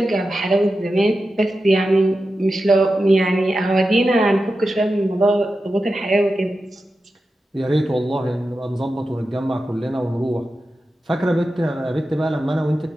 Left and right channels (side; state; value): both; normal; correlation 0.91